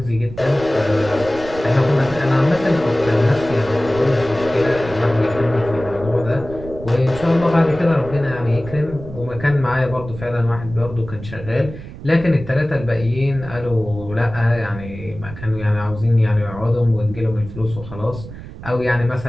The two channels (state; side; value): noise; right; rumble, 13 dB below the sound